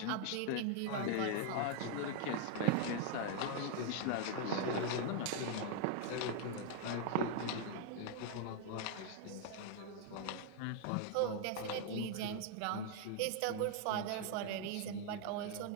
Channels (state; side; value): different; both; correlation 0.00